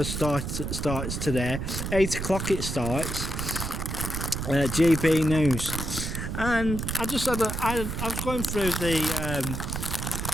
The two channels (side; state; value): right; noise; rumble, 4 dB below the sound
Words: starts today. 8 o'clock it starts. GB News, and I just had I've gone through